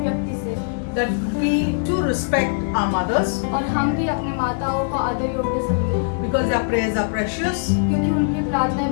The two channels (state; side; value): silent; right; digital silence